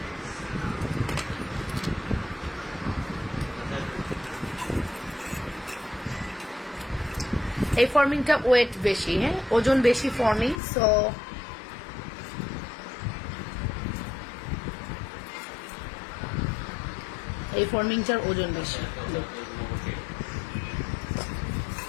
এই ফর্মিংটা ওয়েট বেশি, হ্যাঁ, ওজন বেশি ফর্মিং, সো এই ফর্মিংটার ওজন বেশি।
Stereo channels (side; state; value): right; drops out; at 10.6 s